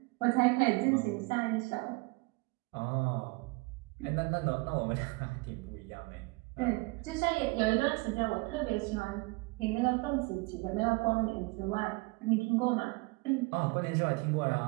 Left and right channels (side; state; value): left; quieter; 26.0 dB